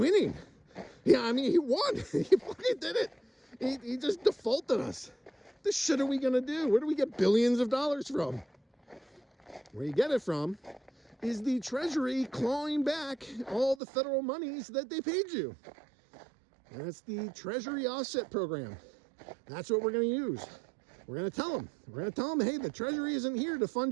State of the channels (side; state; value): left; drops out; at 13.8 s